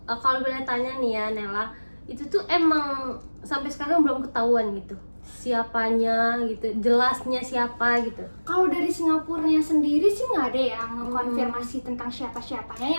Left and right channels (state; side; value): inverted; both; correlation -1.00